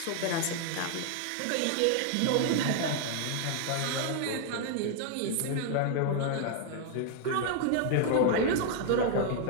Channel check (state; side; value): different; both; correlation 0.00